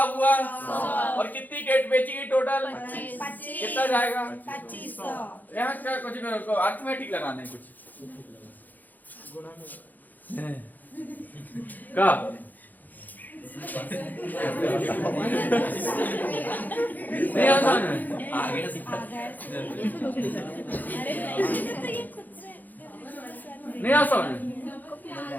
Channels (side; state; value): right; late; 0.084 ms